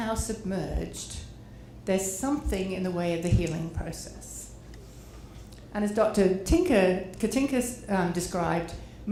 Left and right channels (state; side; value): identical; both; correlation 1.00